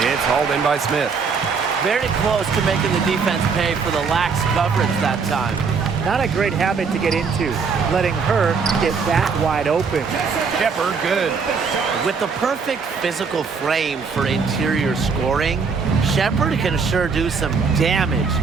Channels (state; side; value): quieter; left; 5.4 dB